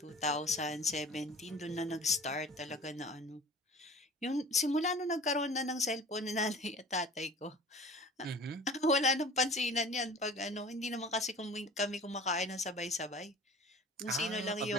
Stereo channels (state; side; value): normal; both; correlation 0.43